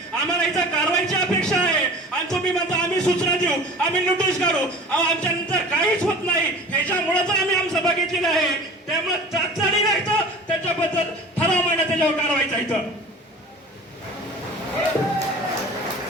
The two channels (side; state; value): both; normal; correlation 0.40